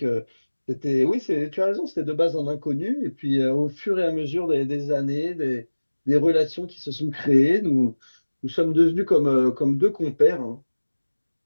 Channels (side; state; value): both; inverted; correlation -1.00